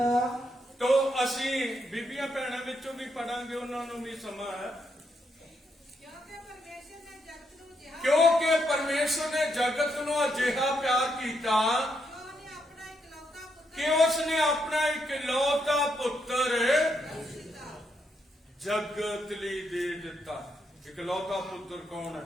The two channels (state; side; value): normal; both; correlation 0.79